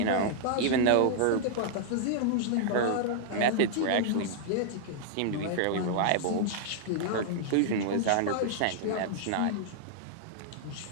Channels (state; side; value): different; both; correlation -0.01